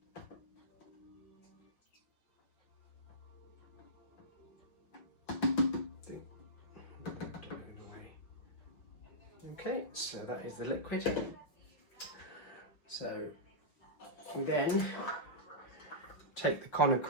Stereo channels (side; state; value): right; late; 6.2 ms